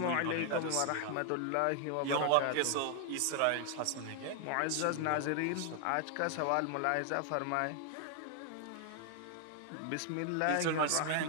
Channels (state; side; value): different; both; correlation 0.00